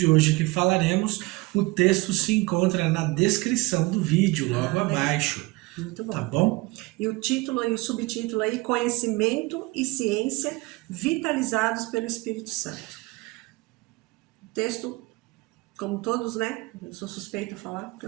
hoje que falaremos. O texto se encontra na descrição do vídeo, logo abaixo. Muito bom. Tá bom? E o título e o subtítulo aí, Conhecimento e Ciência Vitalizados pelo Espírito Santo. O texto, como todos, né? Eu sou suspeita a falar, porque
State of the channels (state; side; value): quieter; left; 23.0 dB